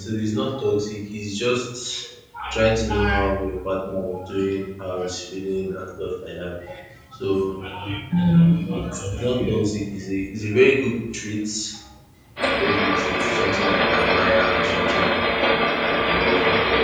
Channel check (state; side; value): identical; both; correlation 1.00